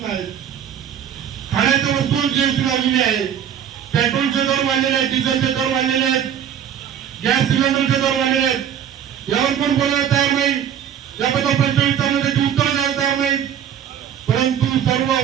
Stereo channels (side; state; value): left; quieter; 9.1 dB